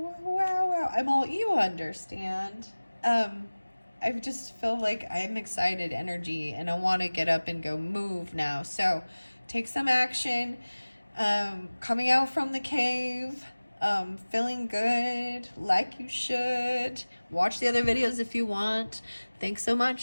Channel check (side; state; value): both; inverted; correlation -1.00